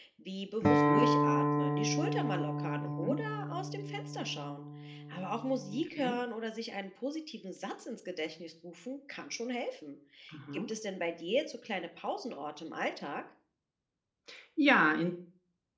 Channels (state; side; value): identical; both; correlation 1.00